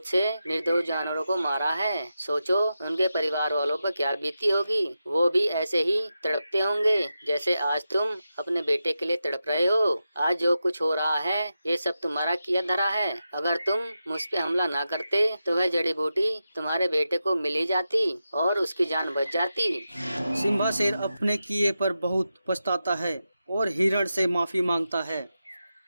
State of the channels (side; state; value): both; inverted; correlation -0.89